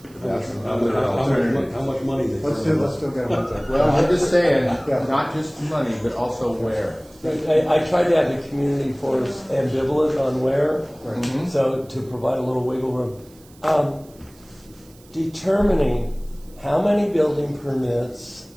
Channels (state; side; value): noise; right; hiss, 27 dB below the sound